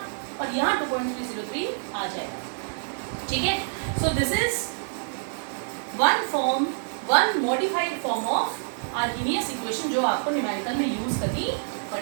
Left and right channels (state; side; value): silent; left; digital silence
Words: और यहाँ 2.303 आ जाएगा। ठीक है, so this is one modified form of Arrhenius equation जो आपको न्यूमेरिकल में यूज करनी